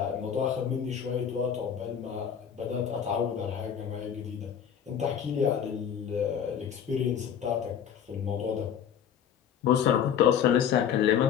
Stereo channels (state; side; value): quieter; right; 8.5 dB